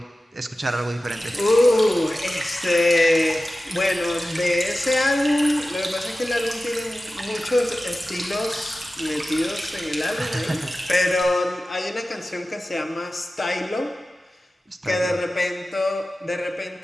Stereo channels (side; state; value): both; normal; correlation 0.95